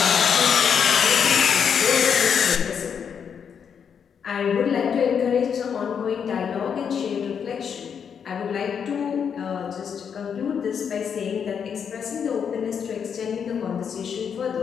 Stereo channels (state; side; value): quieter; right; 7.3 dB